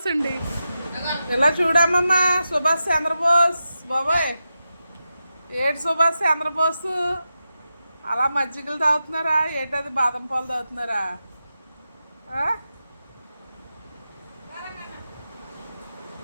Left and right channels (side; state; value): both; inverted; correlation -0.90